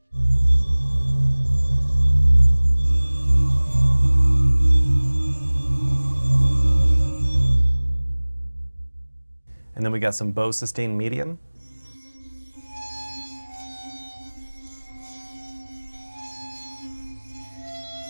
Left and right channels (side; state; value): both; inverted; correlation -1.00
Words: And then we got some bow sustain medium.